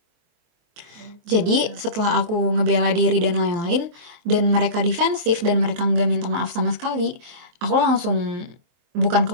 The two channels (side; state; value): left; late; 23 ms